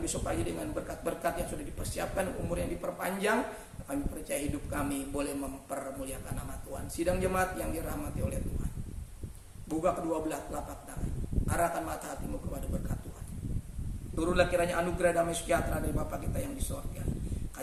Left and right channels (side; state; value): both; identical; correlation 1.00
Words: pagi dengan berkat-berkat yang sudah dipersiapkan, umur yang diperpanjang. Kami percaya hidup kami boleh mempermuliakan nama Tuhan. Sidang jemaat yang dirahmati oleh Tuhan, buka kedua belah telapak tangan, arahkan mata hatimu kepada berkat Tuhan. Turunlah kiranya anugerah damai sejahtera dari Bapa kita yang di surga,